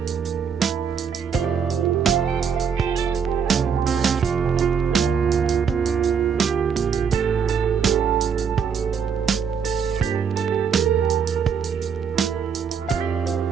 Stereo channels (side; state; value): left; quieter; 6.8 dB